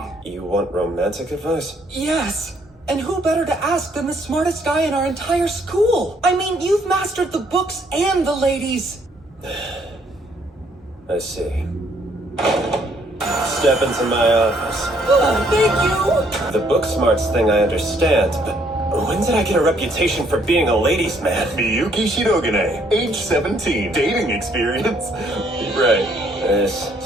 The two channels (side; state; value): both; normal; correlation 0.67